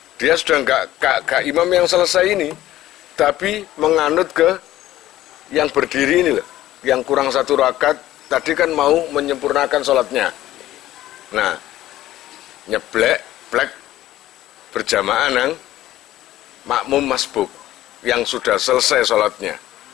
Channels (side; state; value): right; quieter; 14.4 dB